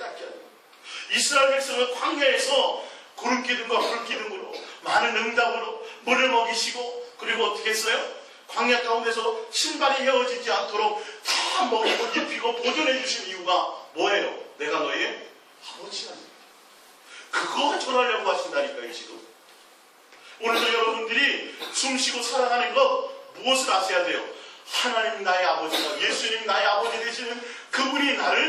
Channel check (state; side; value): identical; both; correlation 1.00